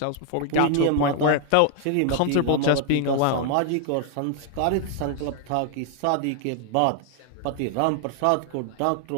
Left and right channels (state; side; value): different; both; correlation 0.00